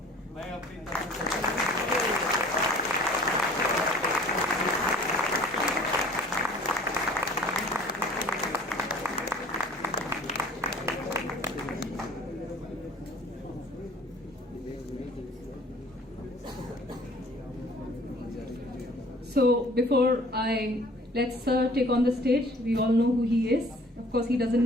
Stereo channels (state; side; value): normal; both; correlation 0.51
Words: my opinion. So before I let Sir take on the stage, we all know who he is. Of course, he doesn't